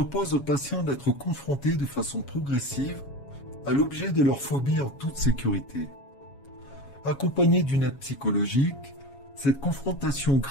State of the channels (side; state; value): right; late; 7.2 ms